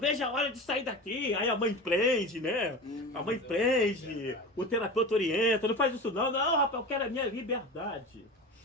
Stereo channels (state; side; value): normal; both; correlation 0.30